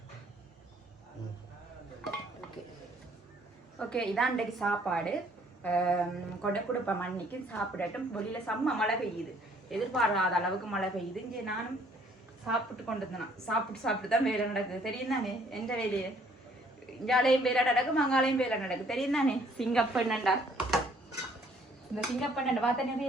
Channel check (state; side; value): normal; both; correlation 0.61